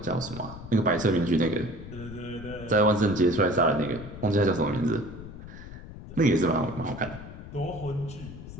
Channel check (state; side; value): noise; left; rumble, 13 dB below the sound